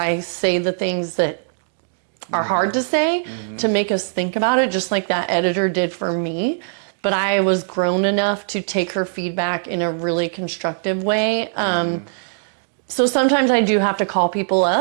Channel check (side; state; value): left; silent; digital silence